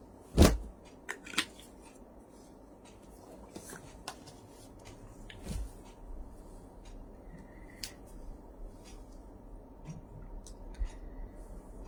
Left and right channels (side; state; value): both; identical; correlation 1.00